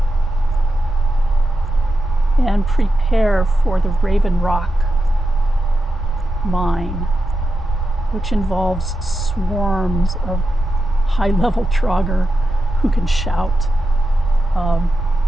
And prepare for the Raven Rock mine, which involves swarms of high-level Draugr who can shout,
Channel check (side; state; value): both; normal; correlation 0.89